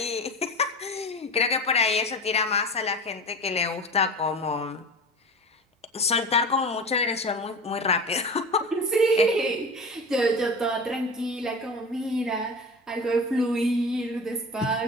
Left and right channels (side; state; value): both; normal; correlation 0.31